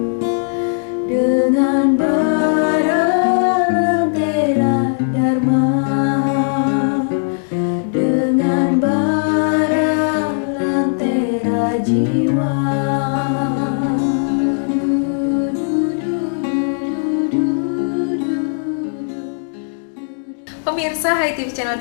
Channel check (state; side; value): silent; right; digital silence